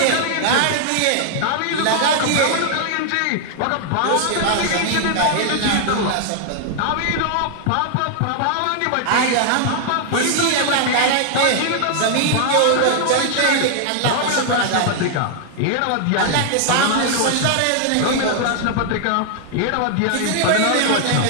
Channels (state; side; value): different; both; correlation 0.00